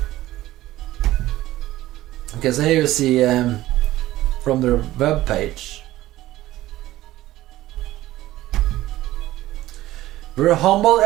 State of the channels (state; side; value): quieter; left; 15.8 dB